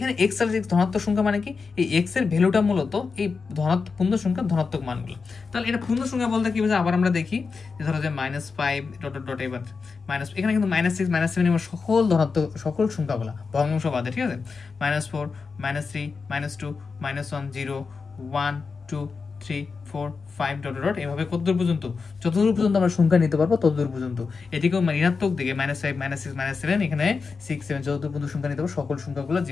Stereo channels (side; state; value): right; quieter; 4.8 dB